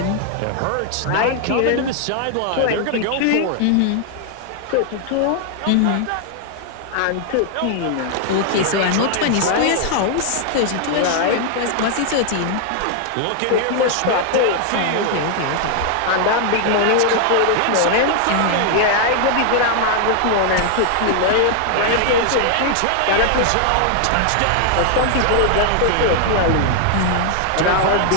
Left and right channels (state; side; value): different; both; correlation 0.00